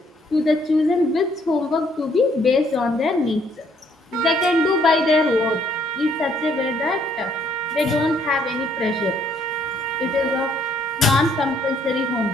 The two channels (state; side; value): normal; both; correlation 0.67